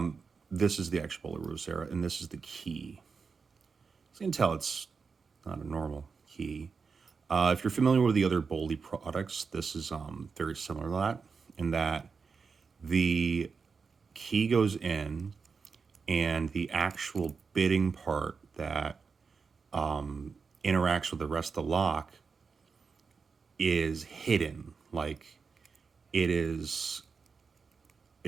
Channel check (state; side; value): quieter; left; 5.2 dB